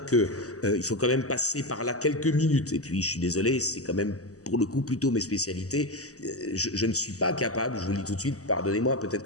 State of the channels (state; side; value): late; right; 0.66 ms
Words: il faut quand même passer par là quelques minutes. Et puis, je suis désolé, c'est quand même pour le coup plutôt mes spécialités. Je ne suis pas capable, je vous le dis tout de suite, pardonnez-moi, peut-être